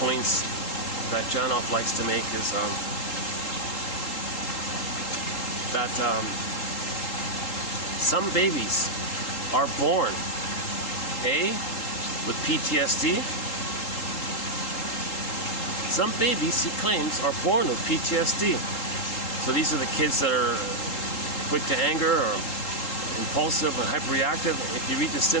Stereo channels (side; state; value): right; late; 3.8 ms